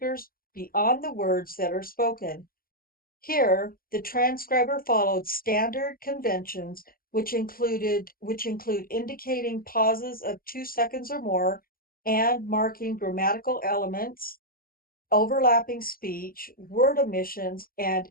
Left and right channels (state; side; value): late; right; 0.42 ms